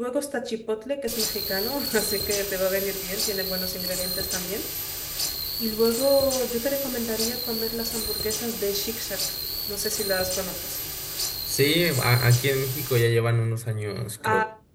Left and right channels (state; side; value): identical; both; correlation 1.00